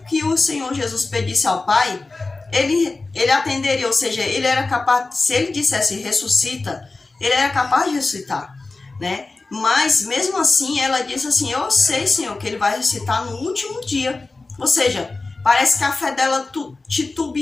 que o Senhor Jesus pedisse ao Pai, ele atenderia, ou seja, ele era capaz, se ele dissesse ressuscita, ele era capaz de ressuscitar, né? Mas mesmo assim ela disse assim, eu sei, Senhor, que ele vai ressuscitar no último dia. Ou seja, parece que a fé dela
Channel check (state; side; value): quieter; right; 3.5 dB